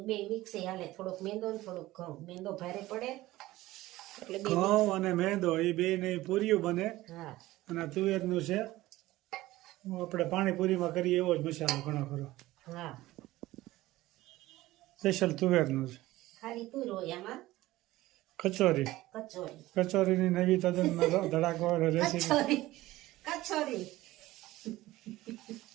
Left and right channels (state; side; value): quieter; left; 17.3 dB